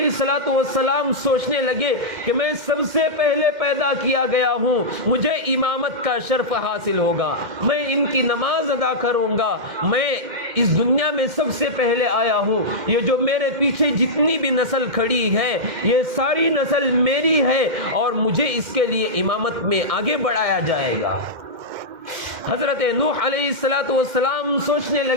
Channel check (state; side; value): late; left; 2.1 ms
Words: السلام سوچنے لگے کہ میں سب سے پہلے پیدا کیا گیا ہوں, مجھے امامت کا شرف حاصل ہوگا, میں ان کی نماز ادا کروں گا, میں اس دنیا میں سب سے پہلے آیا ہوں, یہ جو میرے پیچھے جتنی بھی نسل کھڑی ہے یہ ساری نسل میری ہے اور مجھے اس کے لیے امامت میں آگے بڑھایا جائے گا. حضرت نوح علیہ السلام سوچنے